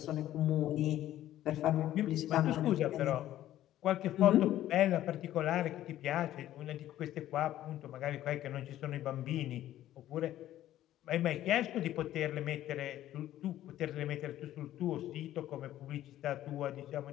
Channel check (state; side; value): quieter; right; 13.2 dB